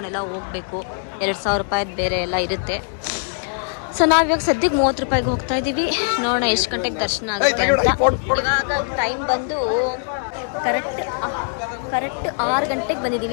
ಹೋಗಬೇಕು. 2,000 ರೂಪಾಯಿದು ಬೇರೆ ಎಲ್ಲ ಇರುತ್ತೆ. ಸೊ ನಾವಿವಾಗ ಸದ್ಯಕ್ಕೆ 30 ರೂಪಾಯಿಗೆ ಹೋಗ್ತಾ ಇದ್ದೀವಿ. ನೋಡೋಣ ಎಷ್ಟು ಗಂಟೆಗೆ ದರ್ಶನ ಆಗುತ್ತೆ ಅಂತ. ಇವಾಗ ಟೈಮ್ ಬಂದು ಕರೆಕ್ಟ್ 6 ಗಂಟೆಗೆ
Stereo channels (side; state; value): right; silent; 65 dB below the other